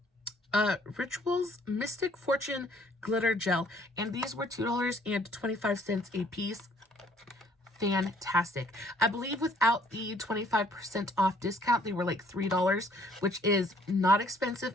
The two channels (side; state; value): both; normal; correlation 0.61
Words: Rituals Mystic Fortune Glitter Gel. And these were $2.25 a piece. Fantastic. I believe without the 25% off discount, they were like $3, which is not expensive